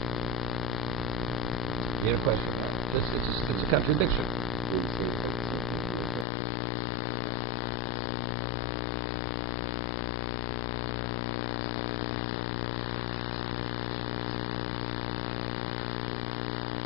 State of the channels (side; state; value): right; drops out; at 6.2 s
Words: You had a question, right? It's a contradiction. Evidently, it's not the case. That's not it. It's not it.